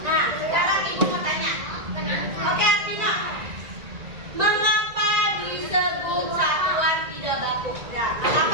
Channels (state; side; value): late; left; 1.9 ms